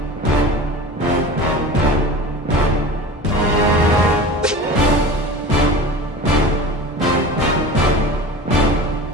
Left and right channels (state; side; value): normal; both; correlation 0.35